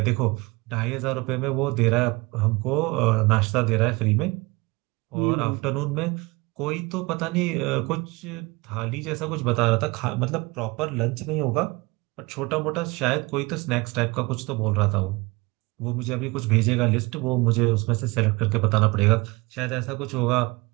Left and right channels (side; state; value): left; quieter; 24.5 dB